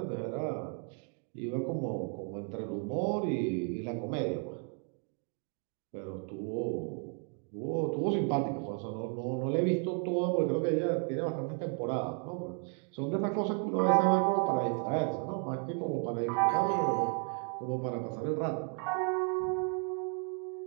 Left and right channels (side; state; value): left; quieter; 39.2 dB